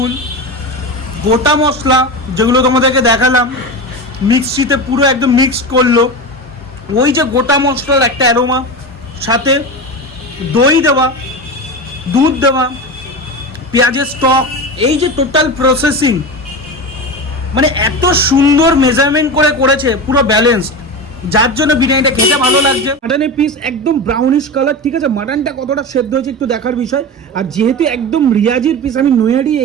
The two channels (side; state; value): both; normal; correlation 0.24